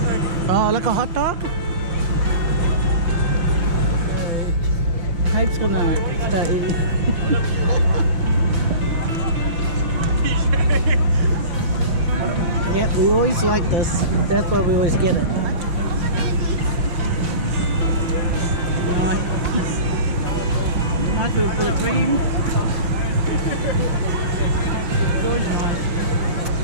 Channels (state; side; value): late; left; 5.9 ms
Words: Oh, like a hot dog? Hope's gonna start eating. Yep, we always like this. That's why we always get it. Nice. Nice with a bit of cream. It's always nice.